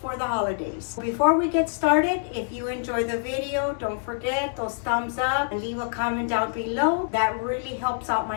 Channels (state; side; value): silent; right; digital silence